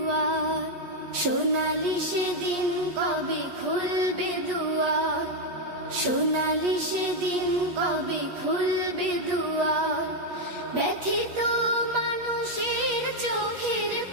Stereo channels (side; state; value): left; late; 8.3 ms